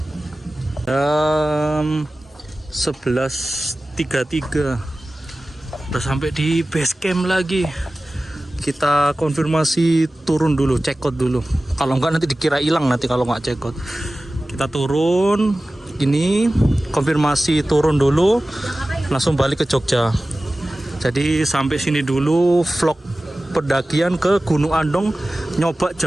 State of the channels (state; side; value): normal; both; correlation 0.96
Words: Jam 11.33 udah sampai di base camp lagi. Kita konfirmasi turun dulu, check out dulu, kalau enggak nanti dikira hilang nanti kalau nggak check out. Kita turun, ini konfirmasi turun dulu langsung balik ke Jogja. Jadi sampai sini dulu vlog pendakian ke Gunung Andong, nyoba